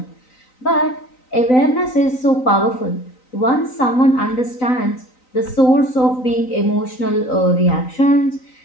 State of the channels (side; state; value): right; late; 3.9 ms